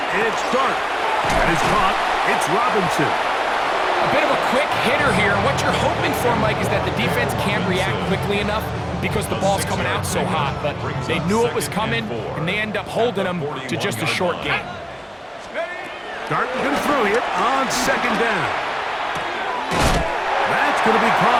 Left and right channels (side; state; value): both; identical; correlation 1.00